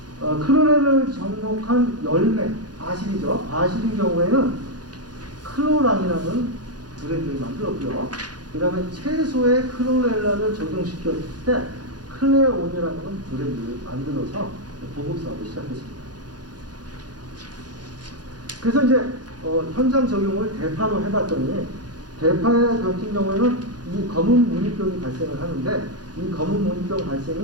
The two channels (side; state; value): left; late; 0.69 ms